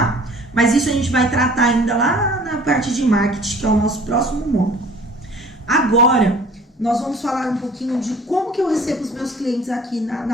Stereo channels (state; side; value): normal; both; correlation 0.50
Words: Mas isso a gente vai tratar ainda lá na parte de marketing, que é o nosso próximo módulo. Agora, nós vamos falar um pouquinho de como que eu recebo os meus clientes aqui na